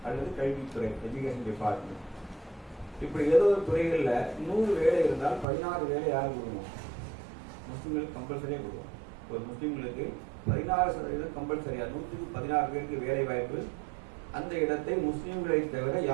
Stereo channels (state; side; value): drops out; left; at 5.5 s